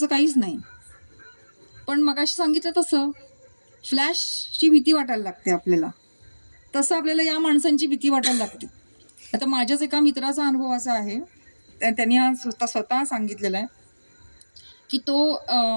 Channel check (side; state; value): both; inverted; correlation -1.00